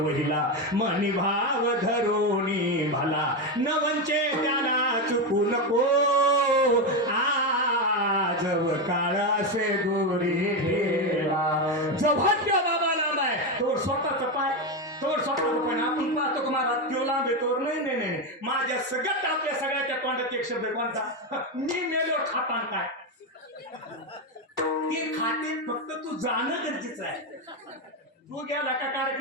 मनी भाव धरोनी भला. नवंचे त्याला चुकू नको. जब काळ असे दोरी ठेला. जेव्हा त्या बाबा लांब आहे तोवर स्वतःचा पाय, तोवर स्वतःचा पाय. आपण पाहतो की महाराज तो लांब आहे तोवर नाही नाही नाही. माझ्या सगळ्यात आपल्या सगळ्याच्या तोंडात एक शब्द कोणता. मी मेलो खातान काय. ते खाते फक्त तू जाणं गरजेचं आहे. तू गेला का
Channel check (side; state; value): both; normal; correlation 0.11